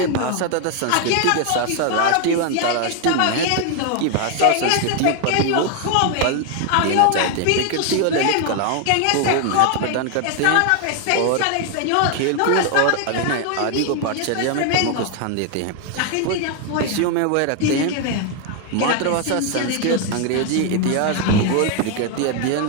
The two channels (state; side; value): different; both; correlation 0.00